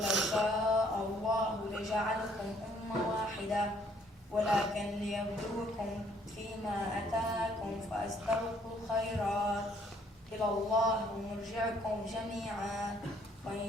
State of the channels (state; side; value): normal; both; correlation 0.64